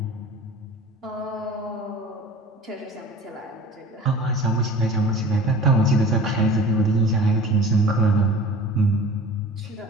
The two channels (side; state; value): both; normal; correlation 0.42